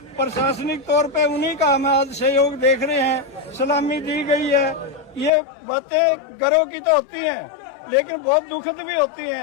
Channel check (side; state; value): right; drops out; at 5.3 s